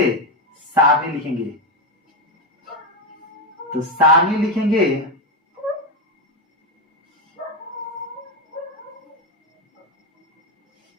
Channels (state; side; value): normal; both; correlation 0.10